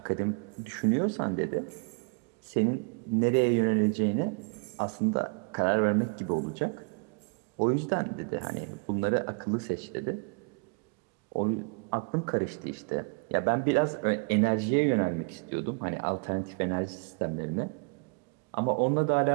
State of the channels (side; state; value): left; quieter; 35.3 dB